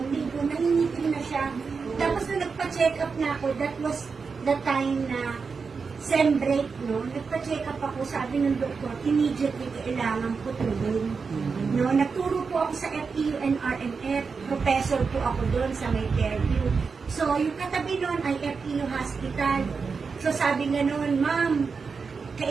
linggo, nangingitim na siya. Tapos nung nagpa-check up na ako, that was the time na sem break, no? Nagpa-check up ako, sabi ng doktor, immediately kailangan putulin. No, nagturo po ako sa FEU and RMF, professor po ako doon sa may Fairview. So, yung katabi noon ay FEU Hospital. So, sabi nga noon, ma'am,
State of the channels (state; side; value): quieter; left; 5.1 dB